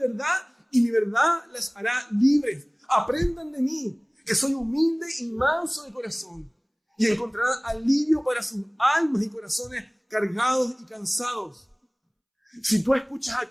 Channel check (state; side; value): identical; both; correlation 1.00